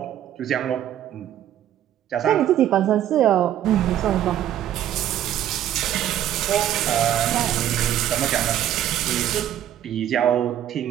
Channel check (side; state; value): left; quieter; 11.4 dB